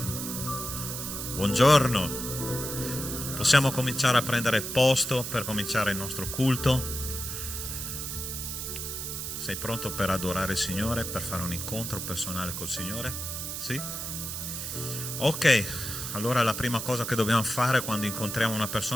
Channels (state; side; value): noise; right; hiss, 5 dB below the sound